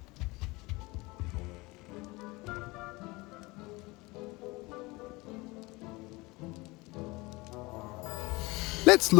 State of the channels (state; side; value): quieter; right; 23.2 dB